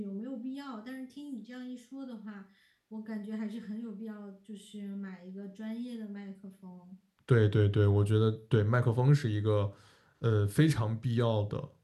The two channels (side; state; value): both; identical; correlation 1.00